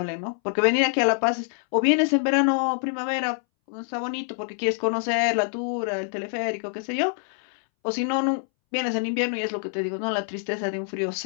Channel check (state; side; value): silent; right; 61 dB below the other